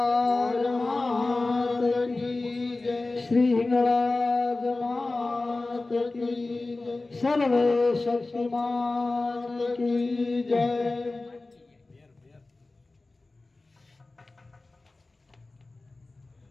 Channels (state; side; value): quieter; right; 3.3 dB